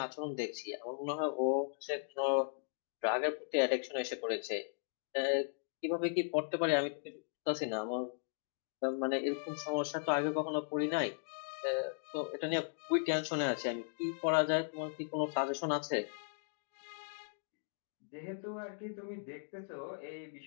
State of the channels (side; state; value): right; silent; digital silence